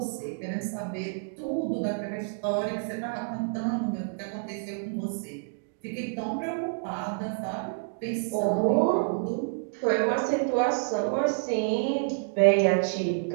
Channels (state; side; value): silent; left; digital silence